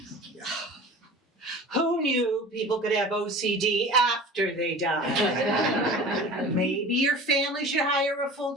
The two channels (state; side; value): normal; both; correlation 0.39